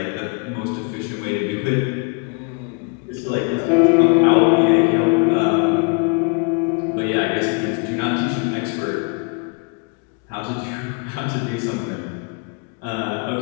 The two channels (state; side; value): quieter; right; 33.2 dB